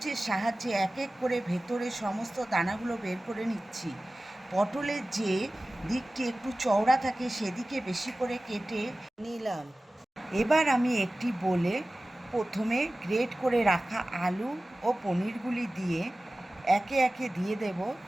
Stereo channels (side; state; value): both; normal; correlation 0.97